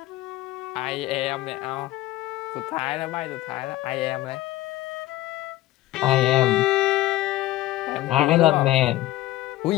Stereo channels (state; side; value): quieter; right; 16.0 dB